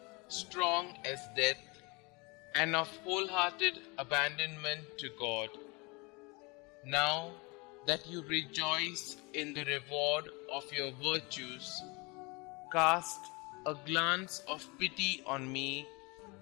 strong as death, and of wholehearted abandonment to God. Now that you rejoice in the reward of your virtues, cast a glance of pity on me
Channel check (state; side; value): quieter; right; 27.5 dB